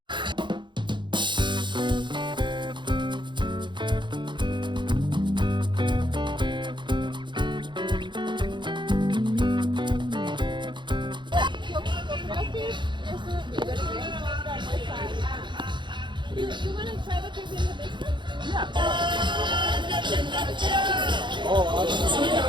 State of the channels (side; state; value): left; late; 0.23 ms